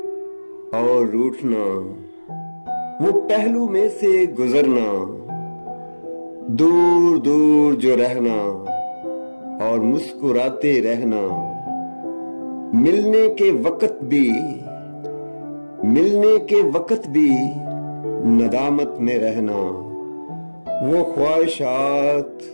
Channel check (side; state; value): both; inverted; correlation -1.00